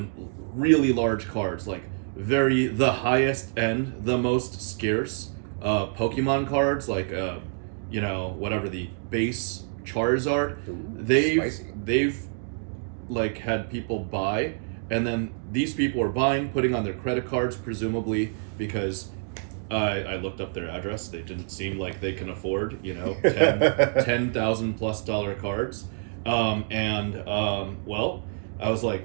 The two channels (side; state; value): left; silent; 60 dB below the other